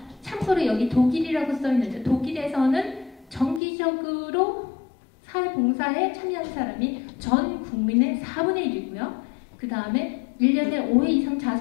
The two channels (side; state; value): right; drops out; at 3.6 s